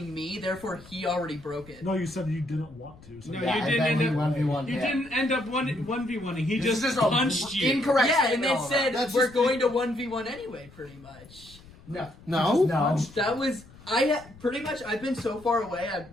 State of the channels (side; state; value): left; noise; rumble, 22 dB below the sound